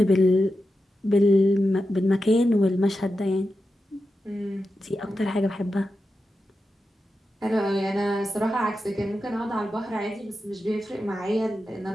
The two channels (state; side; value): normal; both; correlation 0.90